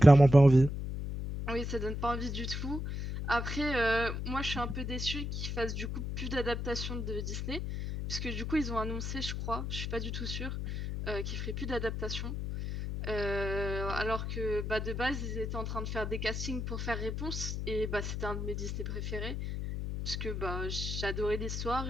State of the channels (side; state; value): left; noise; hum, 4 dB below the sound